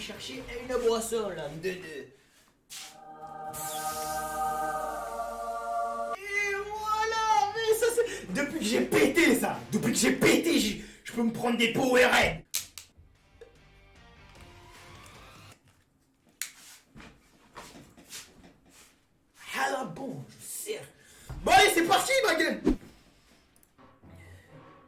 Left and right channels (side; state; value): both; identical; correlation 1.00